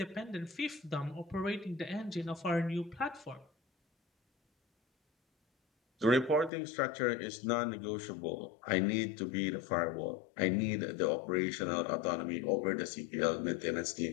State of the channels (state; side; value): drops out; right; at 6.5 s